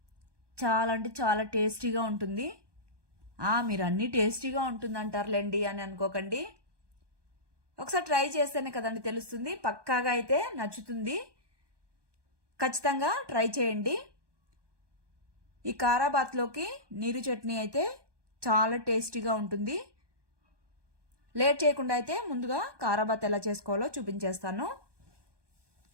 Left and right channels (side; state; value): left; late; 1.2 ms